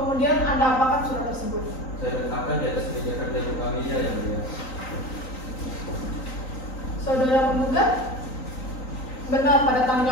Anda apakan surat tersebut? Saya letakkan di atas meja kerja bu familia yang mulia. Saudara penggugat, benar pada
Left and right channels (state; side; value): late; right; 3.9 ms